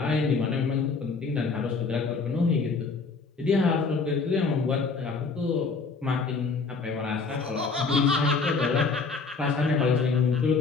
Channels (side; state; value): right; quieter; 4.5 dB